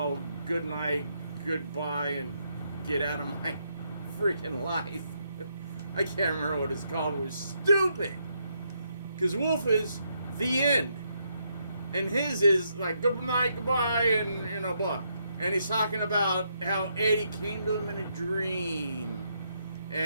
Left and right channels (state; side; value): inverted; both; correlation -0.77